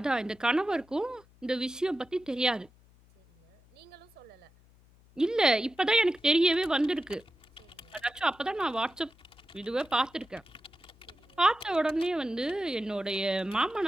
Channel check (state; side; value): noise; left; hum, 28 dB below the sound